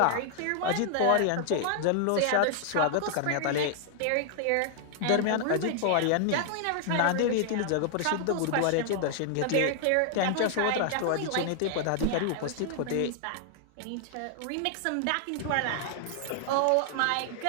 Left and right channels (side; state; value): both; different; correlation 0.00